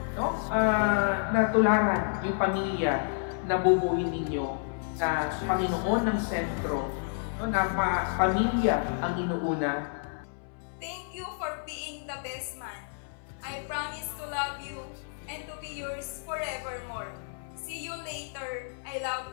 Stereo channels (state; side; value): silent; right; 58 dB below the other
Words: No? Na tularan yung pamilya na bubuhin ninyo na Panginoon ng sentro. No? Na pamilya ang inuuna. Thank you for being the best man. I promise to love you and to be yours forevermore. See you later. I love